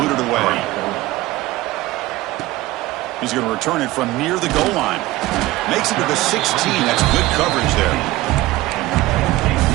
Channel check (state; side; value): quieter; left; 17.9 dB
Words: it away. He's going to return it from near the goal line. Makes it to the 16. That's good coverage there.